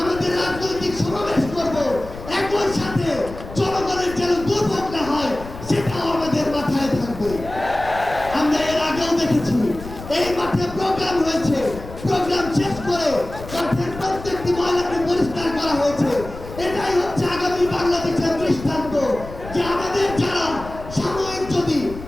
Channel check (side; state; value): left; noise; rumble, 13 dB below the sound